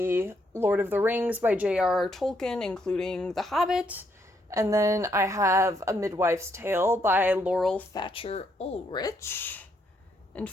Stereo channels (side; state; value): both; normal; correlation 0.74